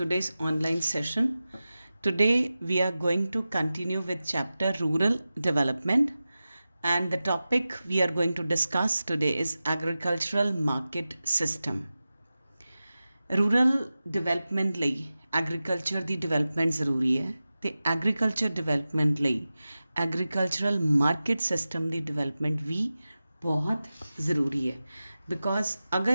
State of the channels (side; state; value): both; inverted; correlation -0.95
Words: online session. Today we are going to continue with chapter Rural Development, and the topic we are going to discuss today is Agricultural Market System. Rural development ਲਈ agriculture ਦੀ development ਜ਼ਰੂਰੀ ਹੈ ਤੇ agriculture development ਲਈ agricultural market system ਦੀ development ਵੀ ਬਹੁਤ ਜ਼ਰੂਰੀ ਹੈ because